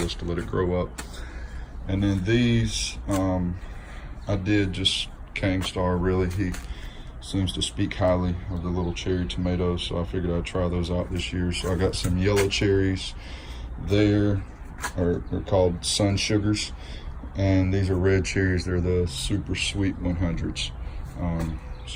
to let it grow up. And then these, I did just Kang Star, really. He seems to speak highly of the little cherry tomatoes, so I figured I'd try those out this year. So I got some yellow cherries there, they're called Sun Sugars, and these are red cherries. They're the super sweet 100s.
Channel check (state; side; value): identical; both; correlation 1.00